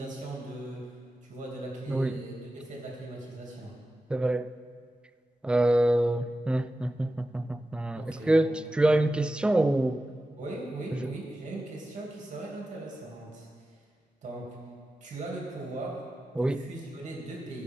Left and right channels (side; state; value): both; normal; correlation 0.93